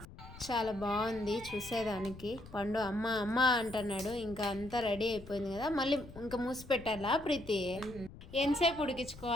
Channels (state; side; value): noise; left; rumble, 16 dB below the sound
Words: చాలా బాగుంది చూసేదానికి. పండు అమ్మ అమ్మ అంటున్నాడు. ఇంకా అంతా రెడీ అయిపోయింది కదా, మళ్ళీ ఇంకా మూసి పెట్టాలా ప్రీతి? ఎంతసేపు